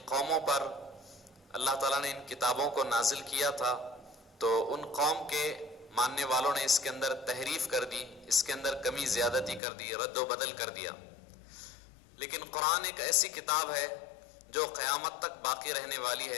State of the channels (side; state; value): right; drops out; at 9.6 s